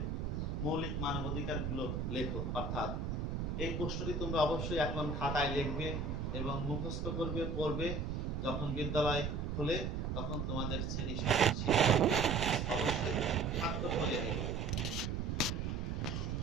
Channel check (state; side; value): noise; right; rumble, 2 dB below the sound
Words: মৌলিক মানবাধিকারগুলো লেখো। অর্থাৎ এই প্রশ্নটি তোমরা অবশ্যই এখন খাতায় লিখবে এবং মুখস্থ করবে, পড়বে। যখন বিদ্যালয় খোলে তখন তোমাদের শ্রেণী